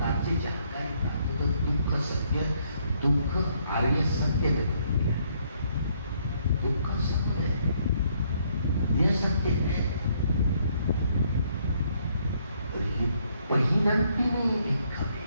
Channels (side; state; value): both; inverted; correlation -0.69